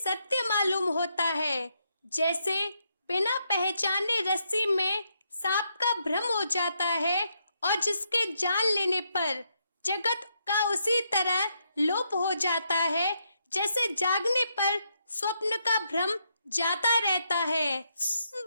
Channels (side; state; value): both; inverted; correlation -0.78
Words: मालूम होता है, जैसे बिना पहचाने रस्सी में सांप का भ्रम हो जाता है, और जिसके जान लेने पर जगत का उसी तरह लोप हो जाता है, जैसे जागने पर स्वप्न का भ्रम जाता रहता है।